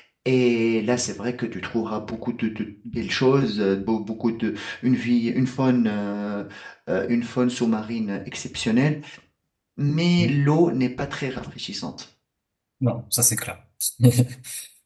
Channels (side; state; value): both; identical; correlation 1.00